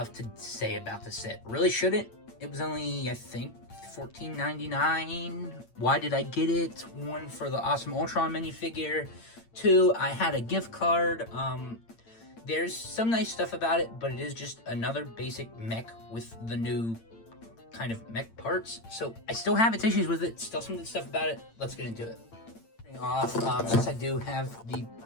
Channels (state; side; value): late; right; 8.8 ms